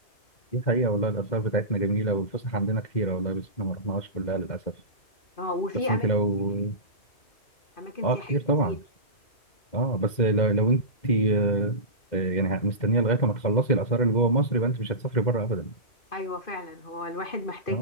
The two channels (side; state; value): right; late; 2.1 ms